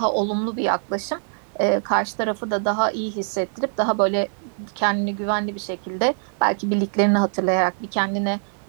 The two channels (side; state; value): left; silent; digital silence